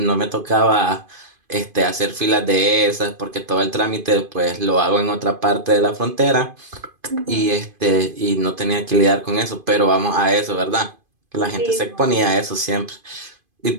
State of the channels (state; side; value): late; left; 2.5 ms